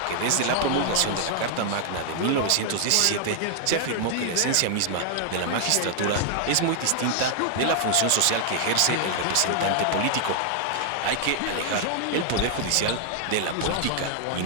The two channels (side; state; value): both; different; correlation 0.00